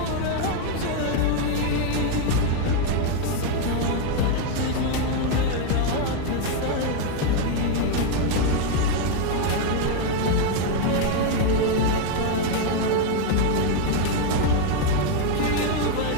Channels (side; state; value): both; different; correlation 0.01